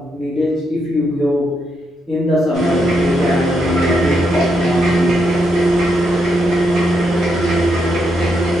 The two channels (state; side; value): normal; both; correlation 0.80